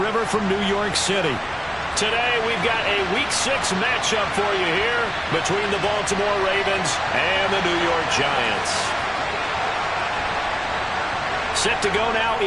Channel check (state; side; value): identical; both; correlation 1.00